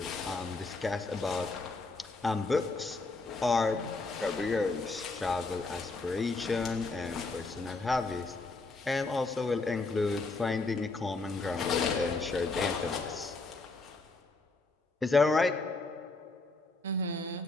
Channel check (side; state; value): right; quieter; 3.5 dB